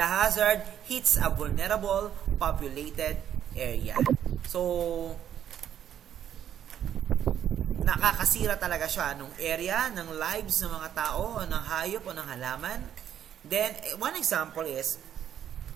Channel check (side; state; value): left; quieter; 9.9 dB